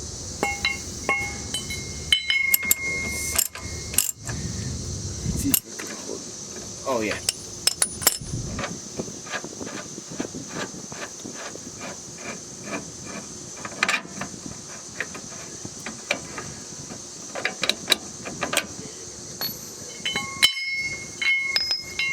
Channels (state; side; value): identical; both; correlation 1.00